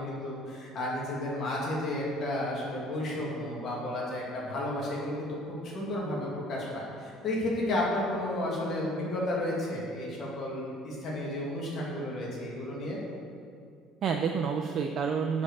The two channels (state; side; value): normal; both; correlation 0.53